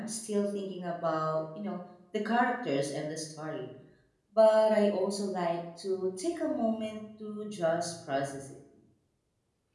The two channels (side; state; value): both; identical; correlation 1.00